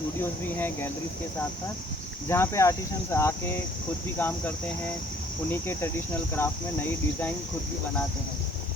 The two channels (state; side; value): normal; both; correlation 0.59